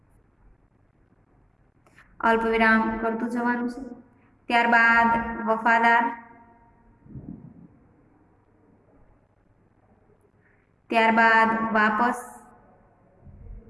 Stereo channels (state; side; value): identical; both; correlation 1.00